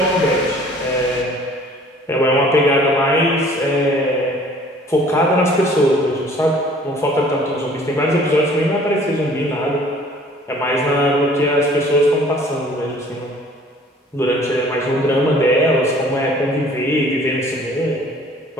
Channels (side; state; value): both; normal; correlation 0.53